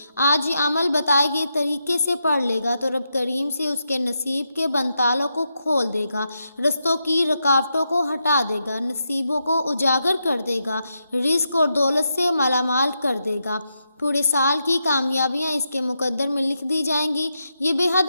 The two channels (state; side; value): inverted; both; correlation -0.84